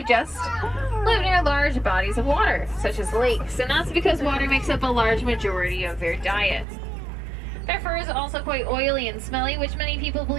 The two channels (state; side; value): drops out; left; at 6.7 s